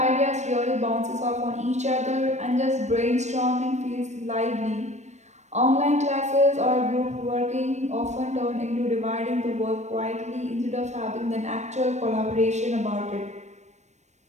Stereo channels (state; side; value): late; left; 0.34 ms